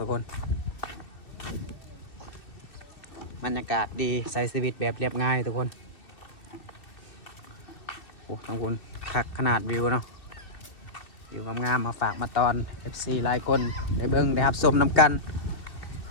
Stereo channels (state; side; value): late; right; 2.6 ms